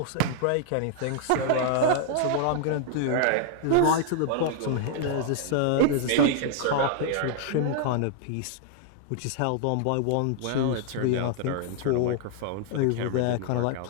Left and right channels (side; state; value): both; different; correlation -0.01